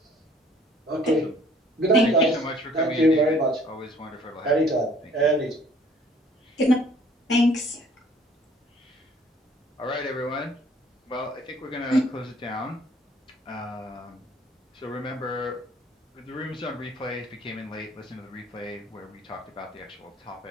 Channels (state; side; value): normal; both; correlation 0.57